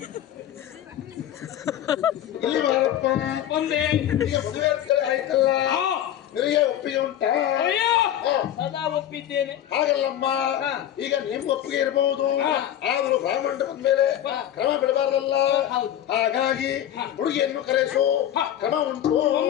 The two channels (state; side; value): quieter; right; 11.3 dB